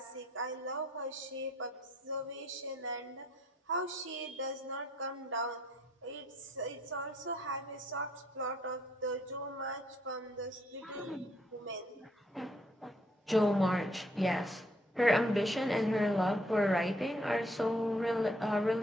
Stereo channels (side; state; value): both; normal; correlation 0.68